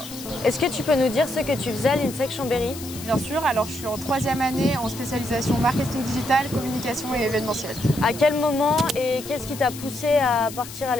Est-ce que tu peux nous dire ce que tu faisais à l'INSEC Chambéry? Bien sûr, alors je suis en 3e année en spécialisation marketing digital, communication et événementiel. À quel moment et qu'est-ce qui t'a poussé à partir à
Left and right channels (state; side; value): noise; left; hiss, 13 dB below the sound